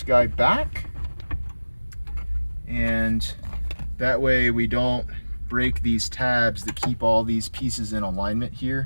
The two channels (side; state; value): both; inverted; correlation -1.00